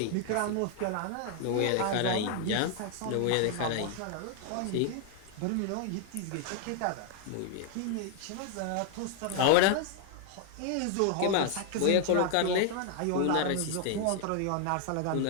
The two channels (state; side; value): different; both; correlation 0.00